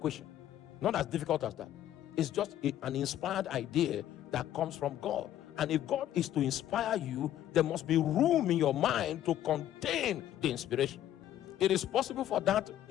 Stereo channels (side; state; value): right; quieter; 12.0 dB